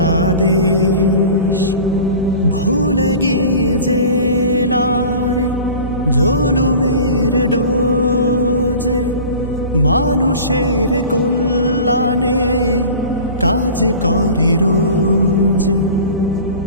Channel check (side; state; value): both; inverted; correlation -0.39